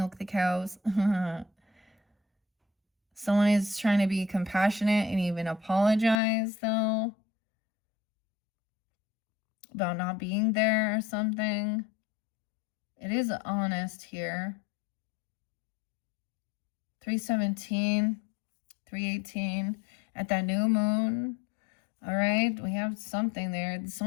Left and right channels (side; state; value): right; drops out; at 6.2 s